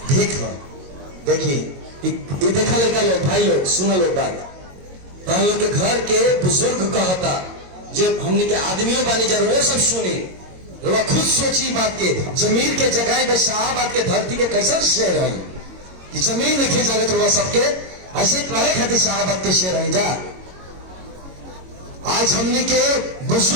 भीख है? देखिए ये देखा लड़का लोग, भाई लोग सुना लोग बात, हम लोग के घर के बुजुर्ग कहता जब हमने के आदमियों बानी जरूर सब सुनी, वो खुद सोची बात के जमीन के जगह में शाहबाद के धरती के कैसन शेर है कि जमीन में खींचा ले तो सबके ऐसे रहे खातिर शाहबाद के शेर है जा। आज हमने के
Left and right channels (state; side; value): late; left; 22 ms